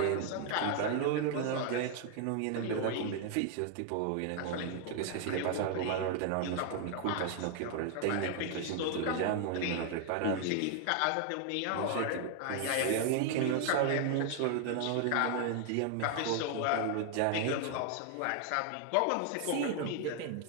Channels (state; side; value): different; both; correlation 0.00